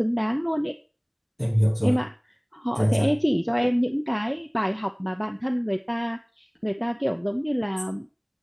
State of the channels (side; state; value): both; identical; correlation 1.00